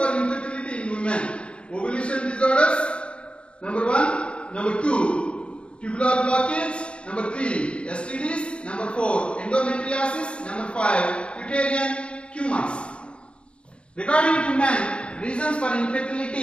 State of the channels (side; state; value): right; late; 0.058 ms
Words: infertility in women. Ovulation disorders, number 1. Number 2, tubular blockage. Number 3, STDs. Number 4, endometriosis. Number 5, uterine tumors. Regarding to men, reasons for